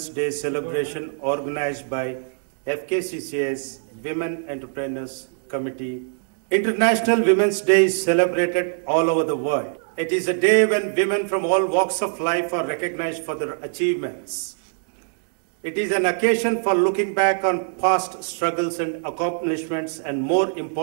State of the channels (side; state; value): left; silent; digital silence